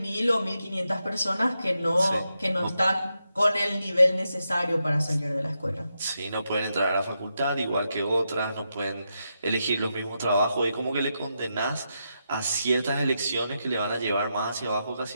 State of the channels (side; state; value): both; inverted; correlation -0.85